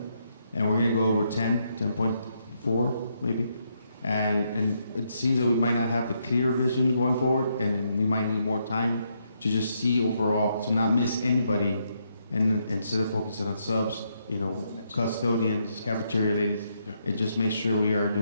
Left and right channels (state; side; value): inverted; both; correlation -0.77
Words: and we're going to go over 10.4 maybe. And it seems that we might not have the clear vision going forward, and we might need more time to just see overall, to not miss anybody, and instead of focusing on subs, you know, custodians, cafeteria ladies, and just make sure we are